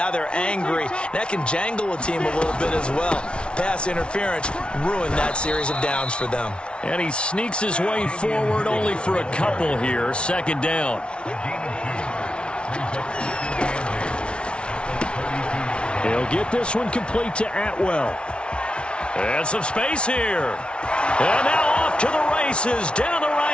they're angry. That can jangle a team a little bit as well. Pass interference ruined that series of downs for them. And he sneaks his way forward only for a couple here. 2nd down. He'll get this one complete to Atwell. And some space here. And now off to the races down the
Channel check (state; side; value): late; right; 0.058 ms